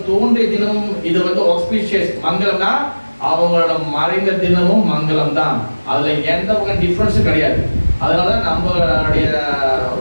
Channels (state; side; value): inverted; both; correlation -1.00